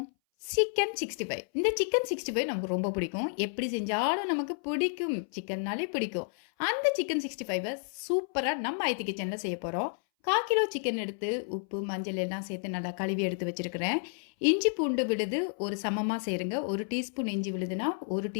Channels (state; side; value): silent; right; 57 dB below the other